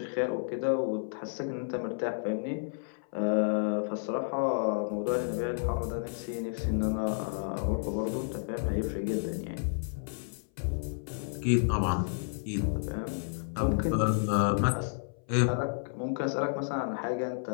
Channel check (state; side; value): silent; right; 57 dB below the other